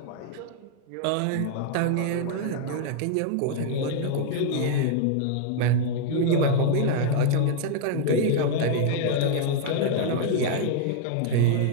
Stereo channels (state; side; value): different; both; correlation 0.00